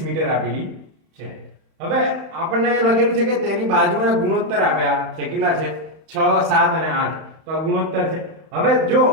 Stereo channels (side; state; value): left; late; 31 ms